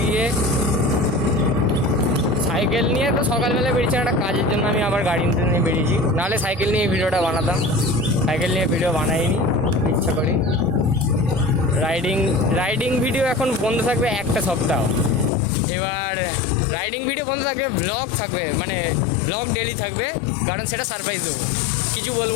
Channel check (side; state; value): right; drops out; at 15.3 s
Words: গিয়ে সাইকেল নিয়ে তো সকালবেলা বেরিয়েছি একটা কাজের জন্য, আমি আবার গাড়ি নিয়ে বেরিয়েছি, নাহলে সাইকেল নিয়ে ভিডিওটা বানাতাম। সাইকেল নিয়ে ভিডিও বানাইনি, ইচ্ছা করি। রাইডিং ভিডিও এখন বন্ধ থাকবে একটা সপ্তাহ। এবার রাইডিং ভিডিও বন্ধ থাকবে, ব্লগ থাকবে, মানে ব্লগ ডেলি থাকবে, কারণ সেটা সারপ্রাইজ দেবো। কিছু